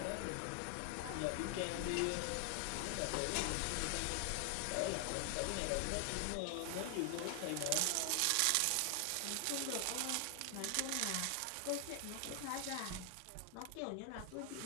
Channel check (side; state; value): both; different; correlation 0.00